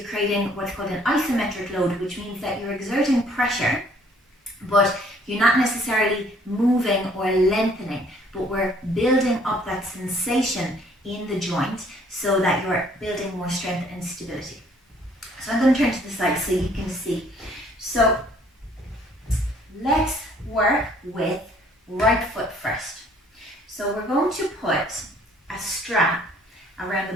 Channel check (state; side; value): normal; both; correlation 0.61